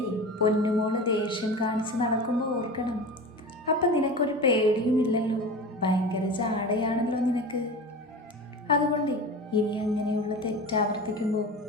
പൊന്നുമോള് ദേഷ്യം കാണിച്ച് നടക്കുമ്പോൾ ഓർക്കണം. അപ്പം നിനക്കൊരു പേടിയുമില്ലല്ലോ, ഭയങ്കര ജാടയാണല്ലോ നിനക്ക്. അതുകൊണ്ട് ഇനി അങ്ങനെയുള്ള തെറ്റാവർത്തിക്കുമ്പോൾ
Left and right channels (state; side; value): normal; both; correlation 0.31